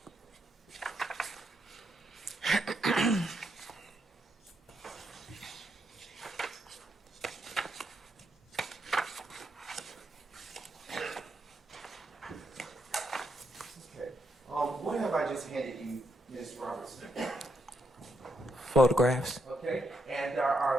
What have I just handed you, Ms. Robertson? Photographs. Okay, and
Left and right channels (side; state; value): both; normal; correlation 0.79